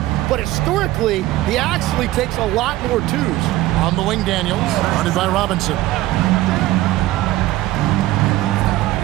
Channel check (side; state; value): left; quieter; 16.5 dB